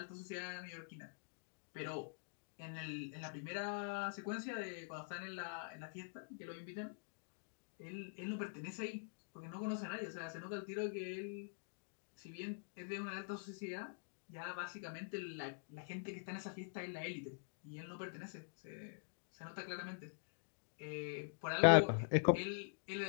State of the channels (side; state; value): right; silent; digital silence